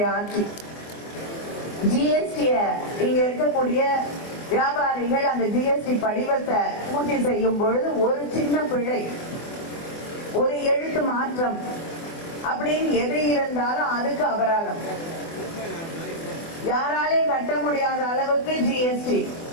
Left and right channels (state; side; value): late; right; 24 ms